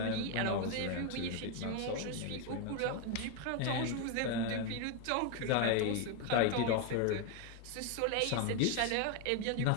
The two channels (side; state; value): both; different; correlation 0.01